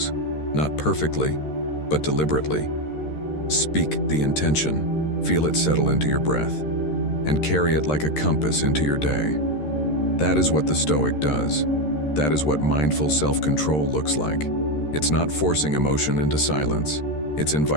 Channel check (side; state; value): right; late; 13 ms